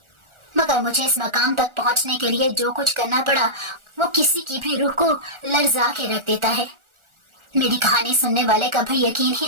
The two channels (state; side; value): late; left; 1.4 ms